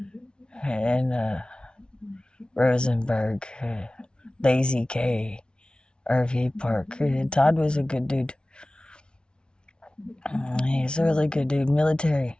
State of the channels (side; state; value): right; late; 0.056 ms